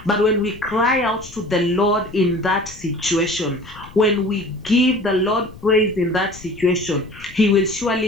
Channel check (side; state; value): left; noise; rumble, 19 dB below the sound